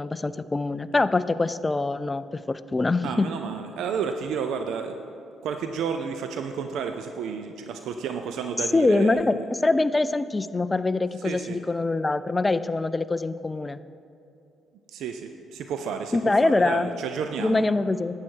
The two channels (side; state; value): both; normal; correlation 0.88